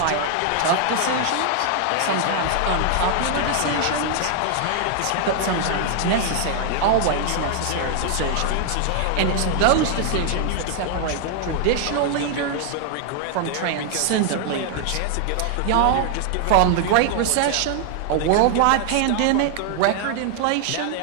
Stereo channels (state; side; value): different; both; correlation 0.00